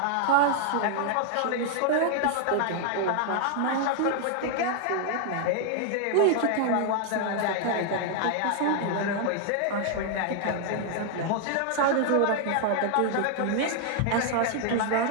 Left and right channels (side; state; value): both; different; correlation 0.00